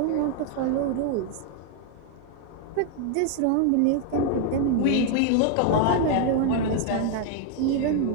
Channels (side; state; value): both; different; correlation 0.00